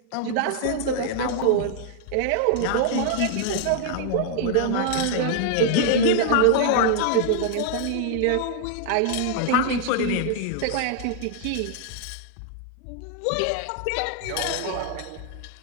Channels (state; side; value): different; both; correlation -0.01